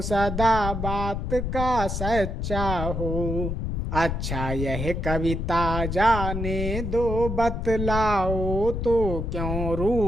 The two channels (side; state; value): left; noise; rumble, 3 dB below the sound